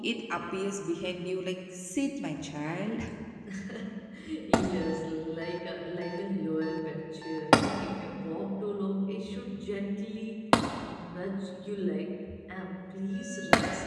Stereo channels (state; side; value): identical; both; correlation 1.00